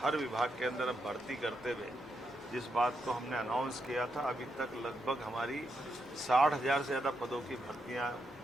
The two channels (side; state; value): both; normal; correlation 0.82